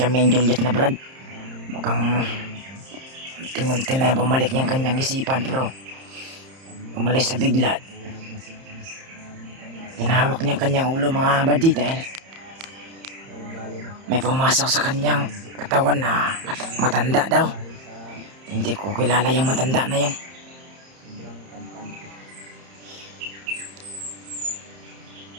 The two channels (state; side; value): late; left; 30 ms